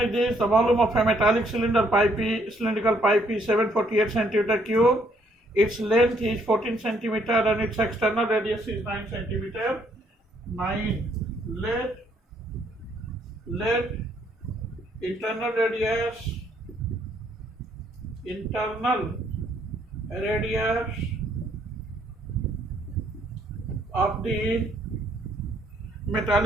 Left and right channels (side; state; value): both; normal; correlation 0.68